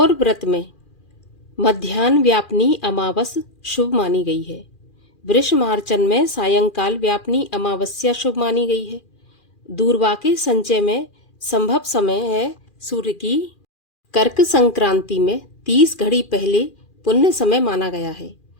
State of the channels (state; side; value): late; right; 2.4 ms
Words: व्रत में मध्याह्न व्यापनी अमावस शुभ मानी गई है। वृष मार्चन में सायंकाल व्यापनी अमावस्या शुभ मानी गई है। दूरवा के संचय में संभव समय है सूर्य की। कर्क संक्रांति में 30 घड़ी पहले पुण्य समय माना गया है।